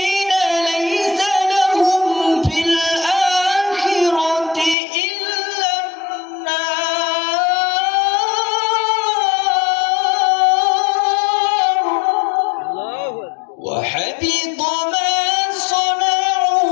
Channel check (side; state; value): right; drops out; at 4.8 s